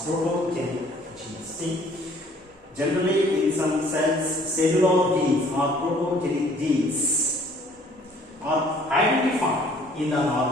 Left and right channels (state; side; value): normal; both; correlation 0.57